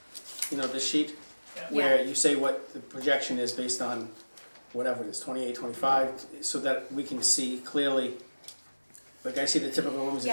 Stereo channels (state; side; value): inverted; both; correlation -1.00